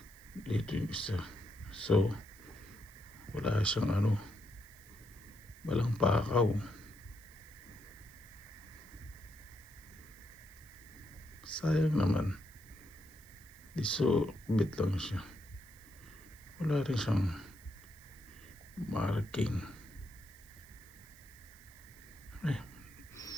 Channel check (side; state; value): right; noise; hiss, 23 dB below the sound